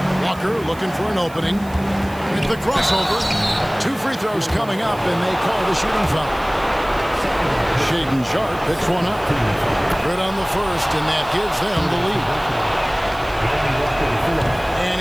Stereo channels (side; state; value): right; noise; hiss, 22 dB below the sound